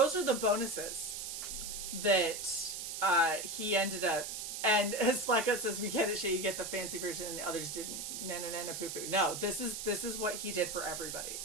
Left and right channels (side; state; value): right; noise; hiss, 6 dB below the sound